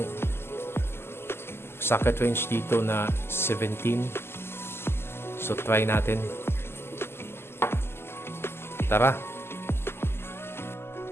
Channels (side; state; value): right; late; 0.12 ms